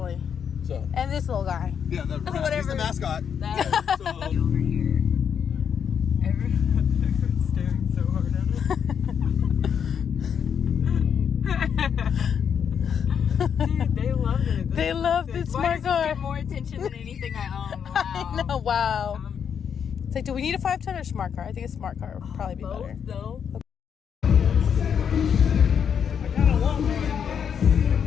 So And this little guy. yeah, he's Whatever. the mascot. That So, over here. Everyone's staring so hard at it. Dude, they love it. They love this smart car. Get more attention than anything I own. Wow. I know, wow. It's like, do we need a 5-ton or smart car? I think a smart car would probably be better. Both, though.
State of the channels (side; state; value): right; quieter; 7.6 dB